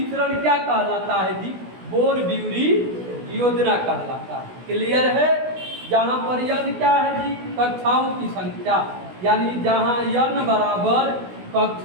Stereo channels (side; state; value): left; late; 16 ms